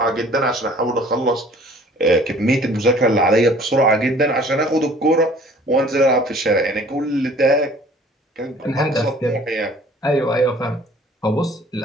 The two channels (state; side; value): normal; both; correlation 0.52